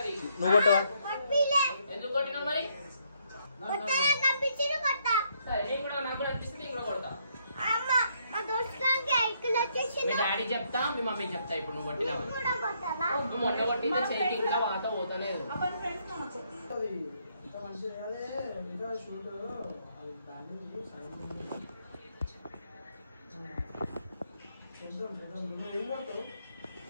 నువ్వు కొట్టవా ఎందుకు కొట్టినావు మరి సరే నేను కూడా నాకు కూడా అనిపిస్తుంది నేను కూడా కొడతా మీ డాడీ చెప్తా మీ మమ్మీ చెప్తా ఇప్పుడు నువ్వు కొట్టినా నువ్వు మొట్ట కొట్టింది చెయ్యి ఇంకా వాత పోతలేదు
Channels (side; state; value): both; inverted; correlation -0.72